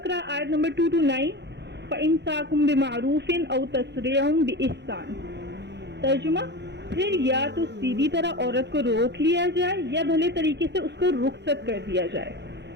آیت نمبر 229، فَإِمْسَاكٌ بِمَعْرُوفٍ أَوْ تَسْرِيحٌ بِإِحْسَانٍ۔ ترجمہ، پھر یا تو سیدھی طرح عورت کو روک لیا جائے یا بھلے طریقے سے اس کو رخصت کر دیا جائے۔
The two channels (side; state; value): left; late; 0.50 ms